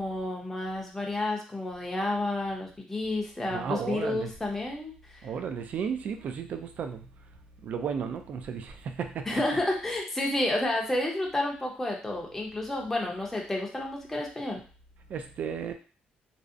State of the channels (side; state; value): both; normal; correlation 0.80